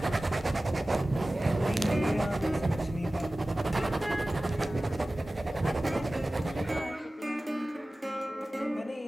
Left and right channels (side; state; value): both; normal; correlation 0.97